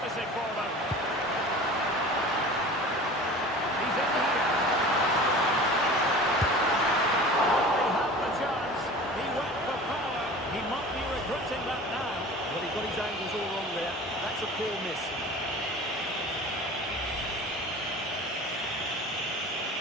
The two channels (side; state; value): both; normal; correlation 0.39